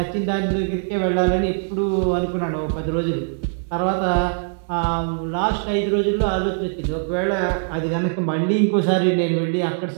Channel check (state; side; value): silent; left; 64 dB below the other